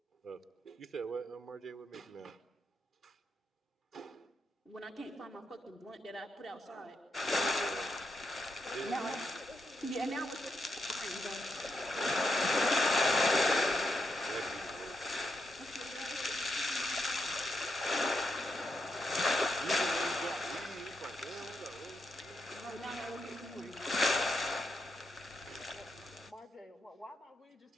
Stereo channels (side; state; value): both; normal; correlation 0.83